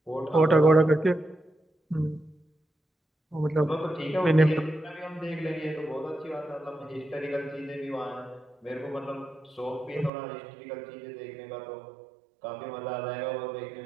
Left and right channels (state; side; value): drops out; left; at 10.1 s